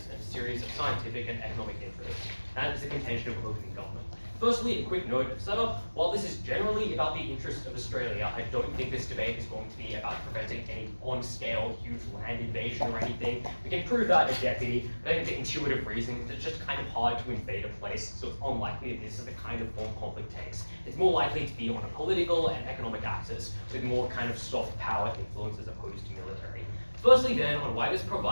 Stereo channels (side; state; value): both; inverted; correlation -1.00